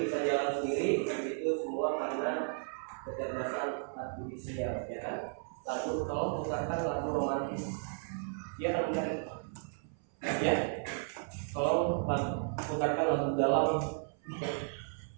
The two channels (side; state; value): left; silent; 55 dB below the other